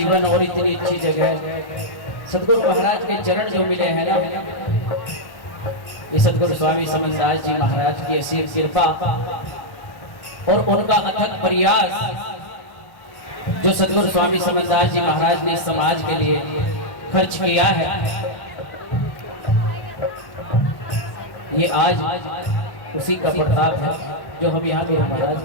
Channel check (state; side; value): late; right; 1.1 ms